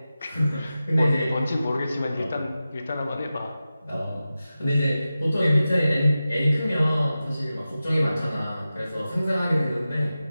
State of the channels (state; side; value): inverted; both; correlation -0.94